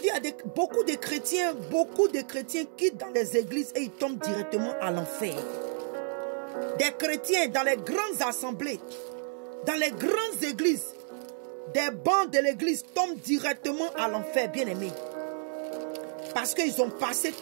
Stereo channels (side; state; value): left; silent; digital silence